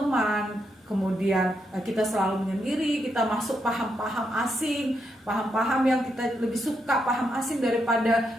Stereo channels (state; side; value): normal; both; correlation 0.81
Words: kemudian kita selalu menyendiri, kita masuk paham-paham asing, paham-paham yang kita lebih suka paham asing daripada